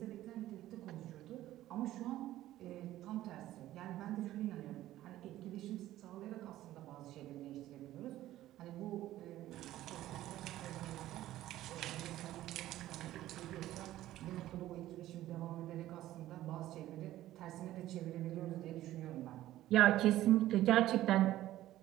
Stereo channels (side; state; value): left; quieter; 14.4 dB